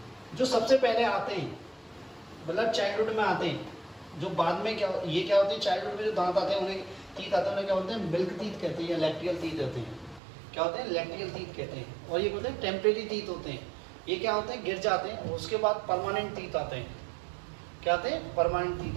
जो सबसे पहले आते हैं, मतलब चाइल्डहुड में आते हैं। जो बाद में क्या, ये क्या होते हैं, चाइल्डहुड में जो दांत आते हैं, उन्हें टीथ आते हैं, उन्हें क्या बोलते हैं, मिल्क टीथ कहते हैं या लैक्टियल टीथ होते हैं। क्या होते हैं, लैक्टियल टीथ कहते हैं। और ये बोलते हैं टेम्परेरी टीथ होते हैं। ये क्या होते हैं, गिर जाते हैं, उसके बाद परमानेंट टीथ आते हैं। क्या आते हैं, परमानेंट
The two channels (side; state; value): left; drops out; at 10.2 s